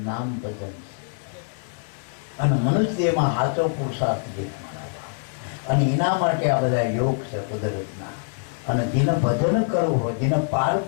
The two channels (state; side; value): silent; right; 60 dB below the other